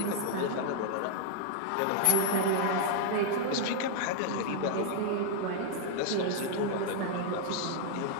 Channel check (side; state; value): both; different; correlation -0.01